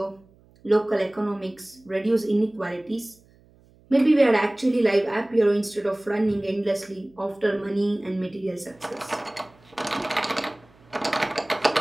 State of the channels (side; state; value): right; noise; hum, 29 dB below the sound